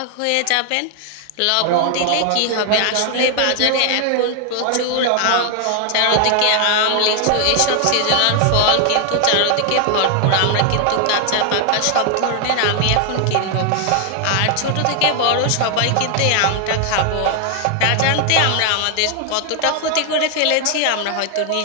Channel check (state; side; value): different; both; correlation 0.00